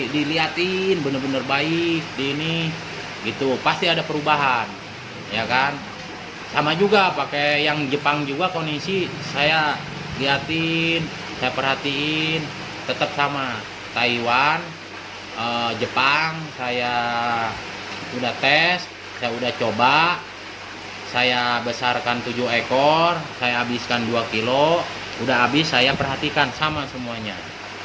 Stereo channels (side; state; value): both; identical; correlation 1.00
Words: diliatin bener-bener baik di ini gitu, pasti ada perubahan ya kan. Sama juga pakai yang Jepang juga, kondisi saya liatin, saya perhatiin tetap sama. Taiwan, Jepang saya udah tes, saya udah coba, saya besarkan 7 ekor, saya habiskan 2 kilo, udah habis saya perhatikan sama semuanya